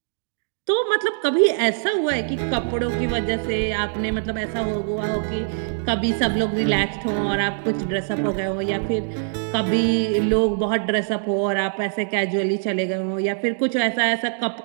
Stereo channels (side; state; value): left; silent; digital silence